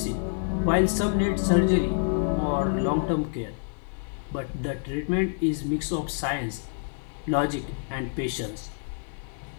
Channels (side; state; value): right; silent; digital silence